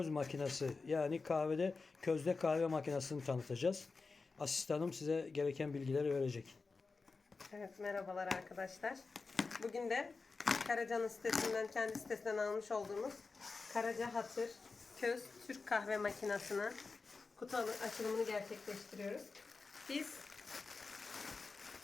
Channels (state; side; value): quieter; right; 4.2 dB